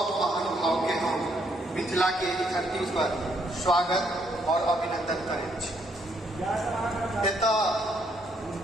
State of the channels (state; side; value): normal; both; correlation 0.72